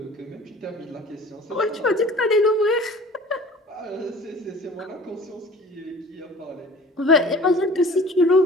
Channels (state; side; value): normal; both; correlation 0.45